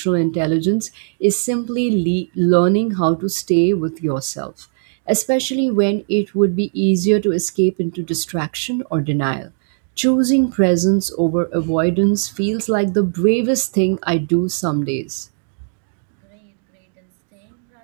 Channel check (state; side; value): silent; left; digital silence